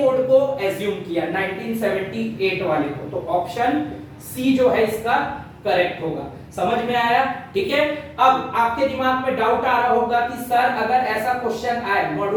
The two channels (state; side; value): identical; both; correlation 1.00